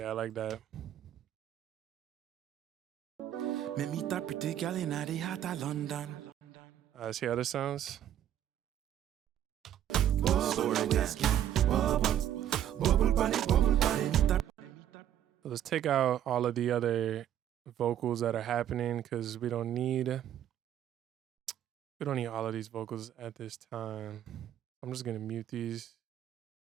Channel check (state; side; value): quieter; left; 10.8 dB